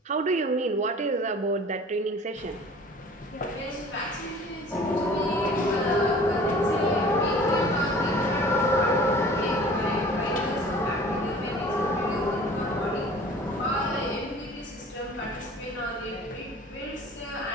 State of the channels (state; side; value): normal; both; correlation 0.46